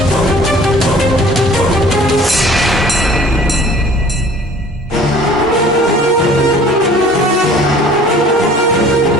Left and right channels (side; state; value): both; normal; correlation 0.50